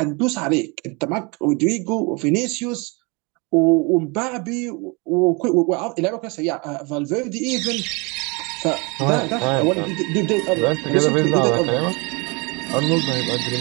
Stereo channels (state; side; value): quieter; left; 29.3 dB